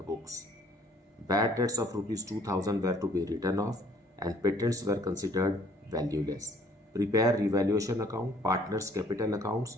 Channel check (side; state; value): both; normal; correlation 0.59